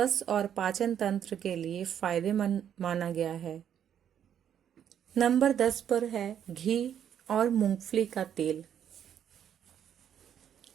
और पाचन तंत्र के लिए फायदेमंद माना गया है। नंबर 10 पर है घी और मूंगफली का तेल।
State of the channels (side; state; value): left; quieter; 9.3 dB